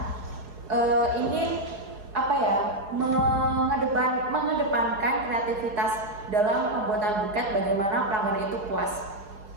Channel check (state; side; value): late; left; 4.7 ms